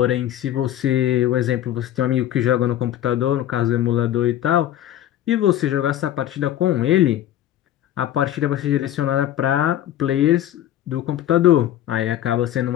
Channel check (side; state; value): right; quieter; 12.1 dB